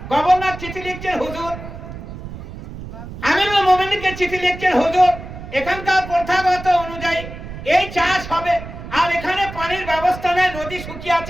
গভর্নর চিঠি লিখছেন, হুজুর আমিরুল মুমিনিনকে চিঠি লিখছেন, হুজুর এখানকার প্রথাগত অনুযায়ী এই চাষ হবে আর এখানে পানির ব্যবস্থা নেই, নদী শুকিয়ে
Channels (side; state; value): right; noise; rumble, 11 dB below the sound